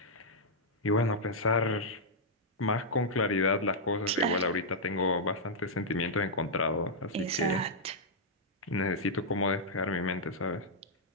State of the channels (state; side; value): normal; both; correlation -0.07